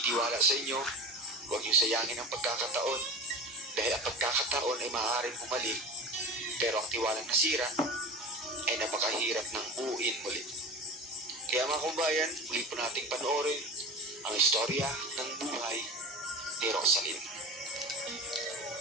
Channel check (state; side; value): normal; both; correlation 0.32